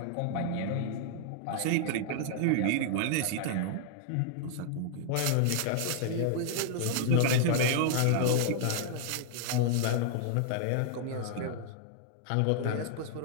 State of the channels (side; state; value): both; different; correlation 0.00